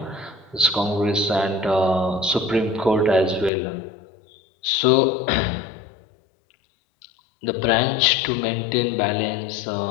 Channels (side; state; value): right; drops out; at 3.5 s